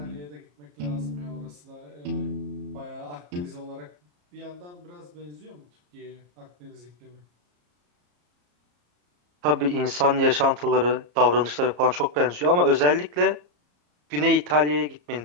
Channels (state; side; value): late; left; 34 ms